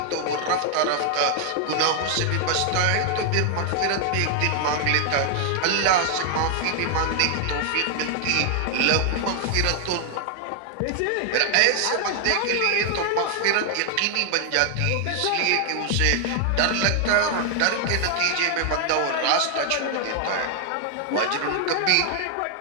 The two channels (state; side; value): different; both; correlation 0.00